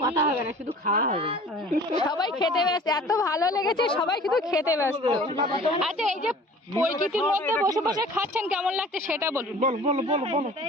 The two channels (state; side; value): normal; both; correlation 0.46